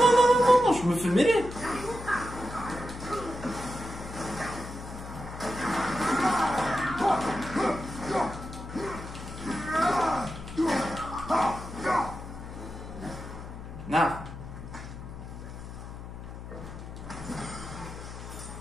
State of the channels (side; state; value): left; noise; hum, 11 dB below the sound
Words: non, non, non, non, je me fais mêler! Non!